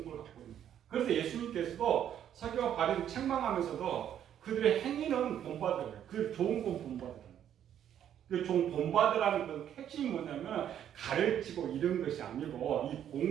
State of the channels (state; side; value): quieter; left; 10.0 dB